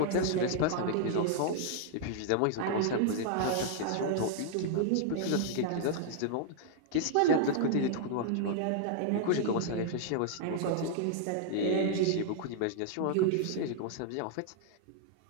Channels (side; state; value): both; different; correlation -0.01